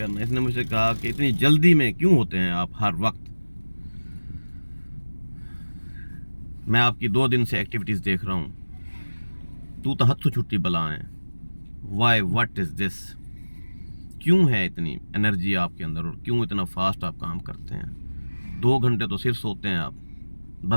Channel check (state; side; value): inverted; both; correlation -1.00